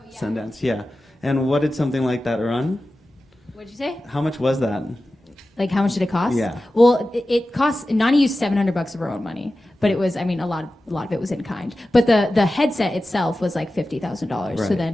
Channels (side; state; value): both; normal; correlation 0.94